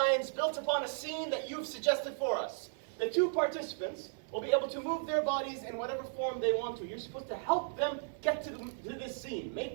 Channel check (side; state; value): left; silent; 54 dB below the other